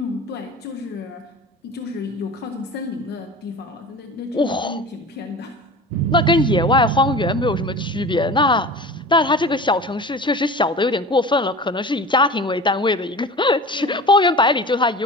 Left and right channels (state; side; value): normal; both; correlation 0.36